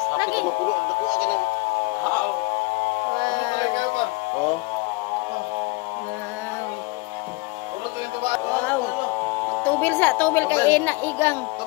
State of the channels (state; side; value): quieter; right; 24.8 dB